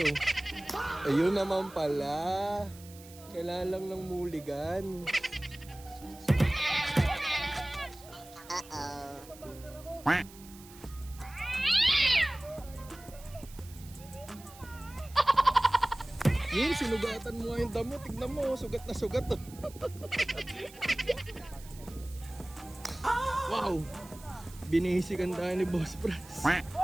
Ayun naman pala. Kailangan lang ng muligan. Yun, sinugatan mo nga yung damo. Tignan mo, sugat na sugat. Wow! Binihisikan tayo ni Boss Franz.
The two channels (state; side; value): noise; right; hiss, 20 dB below the sound